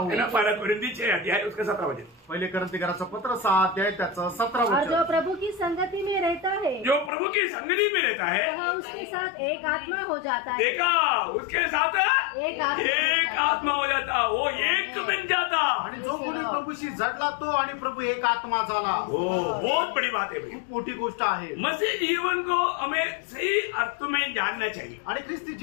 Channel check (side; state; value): right; drops out; at 7.1 s